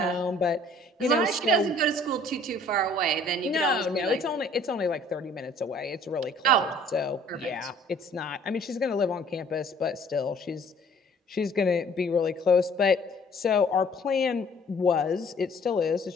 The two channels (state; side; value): normal; both; correlation 0.55